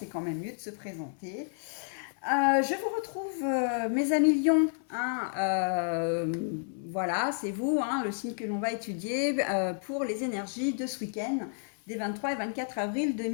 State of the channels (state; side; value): silent; right; 57 dB below the other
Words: quand même mieux de se présenter. Je vous retrouve, mes amis Lions, hein, voilà, c'est vous, hein, le signe que l'on va étudier pour les énergies de ce week-end, des 23 et 24 avril